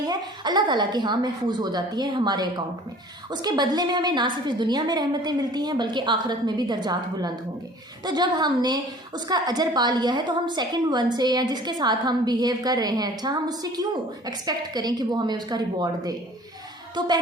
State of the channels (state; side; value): normal; both; correlation 0.48